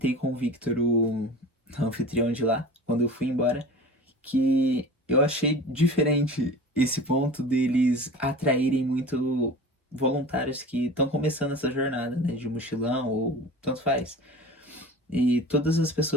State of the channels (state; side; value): normal; both; correlation 0.37